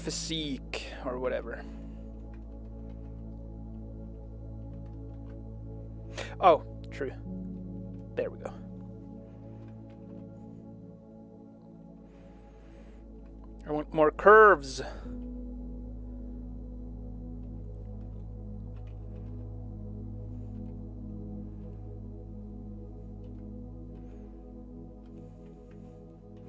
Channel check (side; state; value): both; identical; correlation 1.00